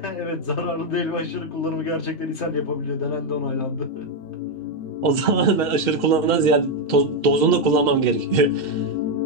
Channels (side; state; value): right; late; 2.7 ms